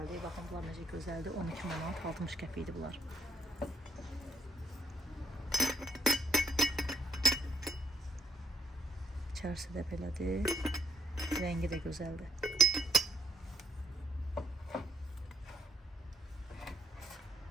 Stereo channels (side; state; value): both; normal; correlation 0.73